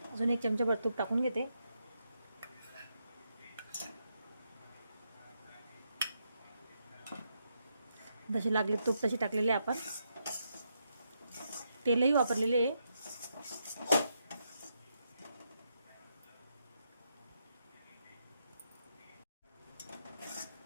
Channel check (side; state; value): both; inverted; correlation -0.81